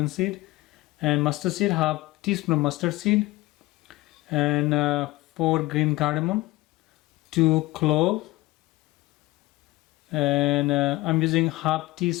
seed, and mustard seed, half teaspoon of mustard seed, and 4 green cardamom, 2 clove, and I'm using half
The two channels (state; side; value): quieter; right; 19.6 dB